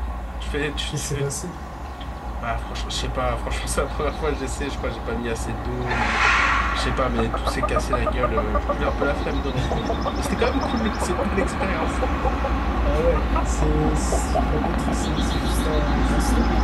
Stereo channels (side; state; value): both; identical; correlation 1.00